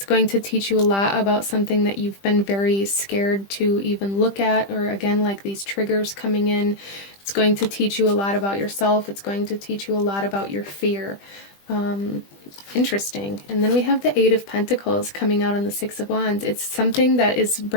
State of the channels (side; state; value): right; late; 20 ms